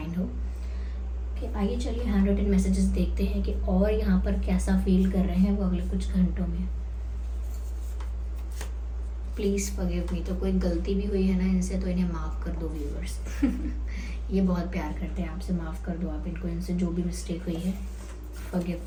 हो। ओके, आइए चलिए हैंड रिटन मैसेजेस देखते हैं कि और यहाँ पर कैसा फील कर रहे हैं वो अगले कुछ घंटों में। Please forgive me. तो कोई गलती भी हुई है ना इनसे, तो इन्हें माफ़ कर दो व्यूअर्स। ये बहुत प्यार करते हैं आपसे, माफ़ कर दो आप इनको, इनसे जो भी मिस्टेक हुई है। Forgive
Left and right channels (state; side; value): identical; both; correlation 1.00